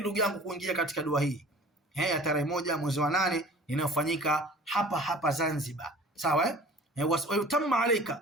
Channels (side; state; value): both; normal; correlation 0.45